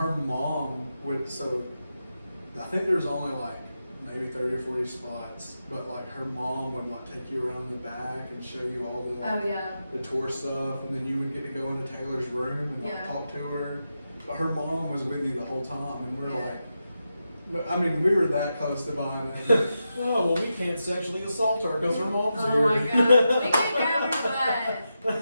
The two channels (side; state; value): both; inverted; correlation -0.89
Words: mom would, so I think there's only like maybe 30 or 40 spots, but like her mom would like take you around the back and show you all the like, Oh, yeah. the tour stuff, and then you would get to go into Taylor's room and like Yeah. talk to her. But her mom was with you the whole time, and we were Yeah. like, but, I mean, we were that close to buying it. Oh, well, we can't sexually assault her because her mom's Oh, here. my God. We can't grab her butt.